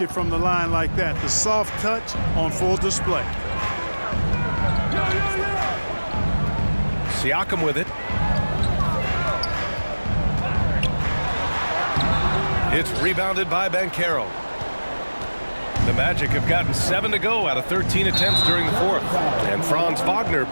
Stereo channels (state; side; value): inverted; both; correlation -1.00